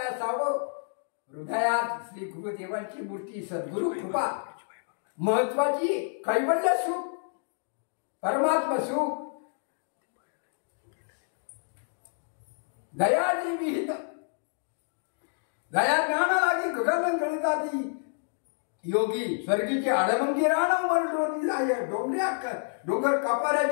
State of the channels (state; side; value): silent; right; digital silence